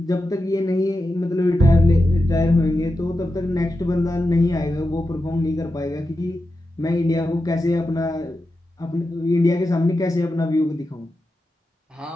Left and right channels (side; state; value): both; normal; correlation 0.90